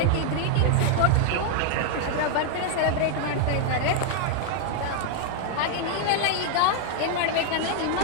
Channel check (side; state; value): both; different; correlation 0.00